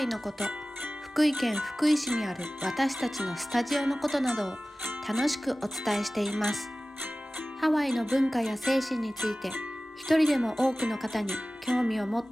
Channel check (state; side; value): normal; both; correlation 0.97